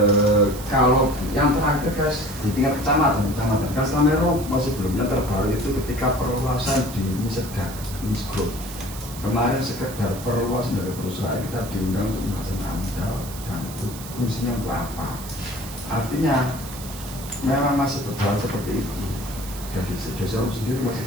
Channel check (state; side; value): noise; right; hiss, 13 dB below the sound